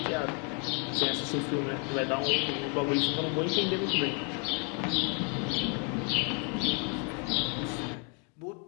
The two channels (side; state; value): right; quieter; 37.1 dB